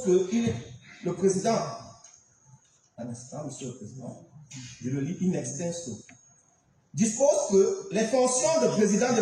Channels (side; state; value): both; identical; correlation 1.00